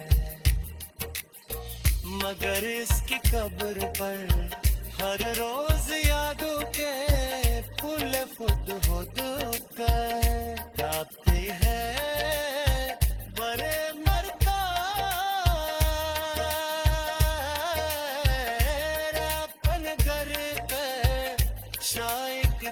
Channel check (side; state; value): both; identical; correlation 1.00